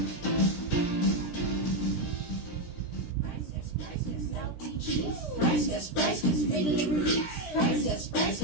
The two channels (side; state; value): right; late; 17 ms